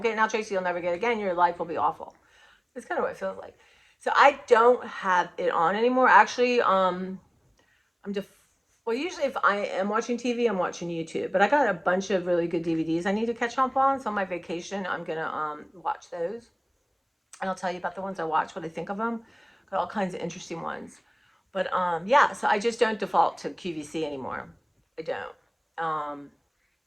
get it now, Tracy, you'll never get it again. Your life will be awful. That's kind of what it feels like. So I don't have it on anymore. Actually, Well, usually if I am watching TV, I'm watching YouTube. But I got a bunch of really good DVDs I need to catch up on. So on my vacation, I'm gonna watch those, and I'll tell you about the ones I watch, what I think of them. Got all kinds of interesting ones. But yeah, so I just don't default to QVC anymore. I don't.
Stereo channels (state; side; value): identical; both; correlation 1.00